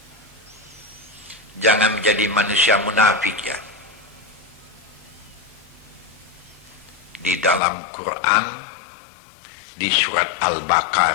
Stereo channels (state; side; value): drops out; right; at 7.6 s